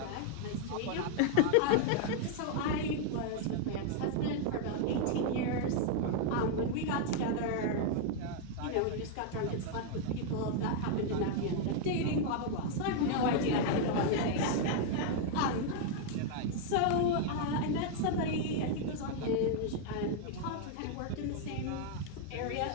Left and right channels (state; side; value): different; both; correlation 0.00